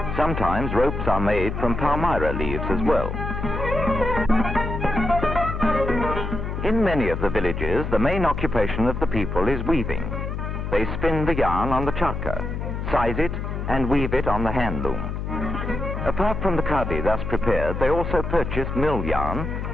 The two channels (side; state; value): left; noise; hum, 4 dB below the sound